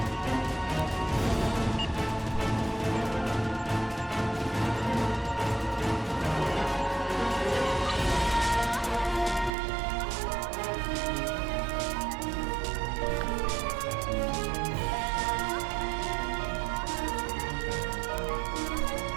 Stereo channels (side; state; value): left; drops out; at 9.5 s